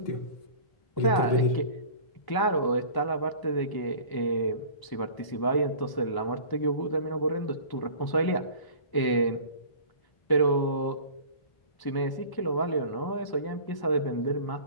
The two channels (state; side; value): late; right; 1.0 ms